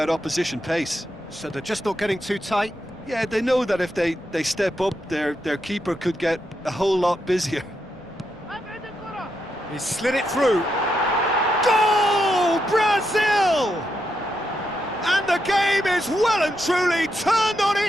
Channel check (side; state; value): left; noise; rumble, 26 dB below the sound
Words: opposition pace. So they're just not getting too tight? Yeah, they know that if they step up, their keeper could get a whole lot busier. He slid it through. Goal! Brazil! And the game is well and truly turned on